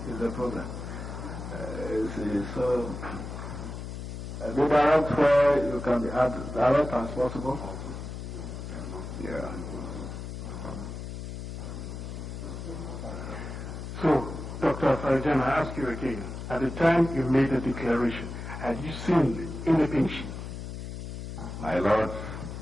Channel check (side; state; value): left; noise; hum, 8 dB below the sound